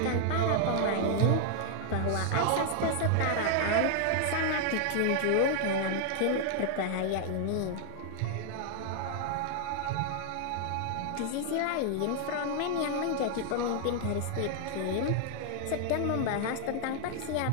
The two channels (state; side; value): different; both; correlation 0.00